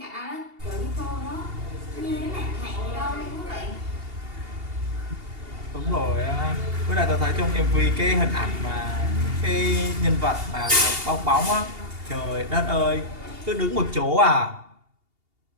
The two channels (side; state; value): left; late; 2.8 ms